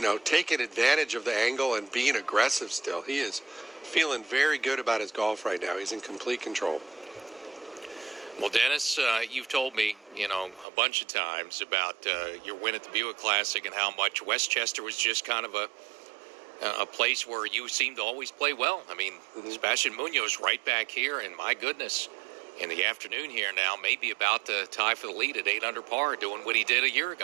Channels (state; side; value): drops out; left; at 10.7 s